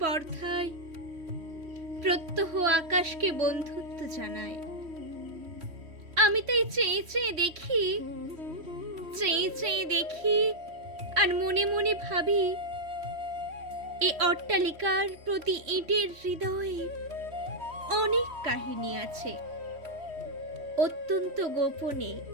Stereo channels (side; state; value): left; late; 3.1 ms